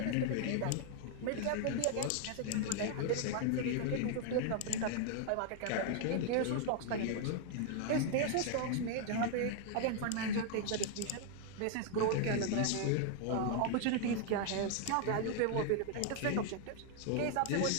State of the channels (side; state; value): both; different; correlation 0.00